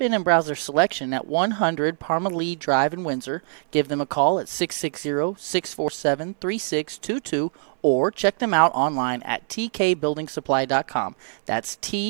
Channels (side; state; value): left; silent; 62 dB below the other